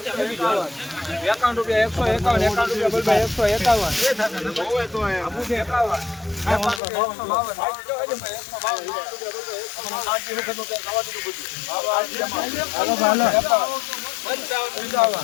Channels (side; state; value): right; drops out; at 6.8 s